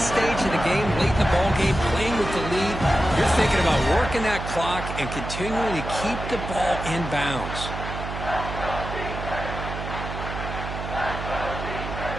stage of the game, late in the ball game, playing with the lead, you're thinking about working that clock and continuing to keep the ball in bounds.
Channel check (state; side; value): noise; right; hum, 7 dB below the sound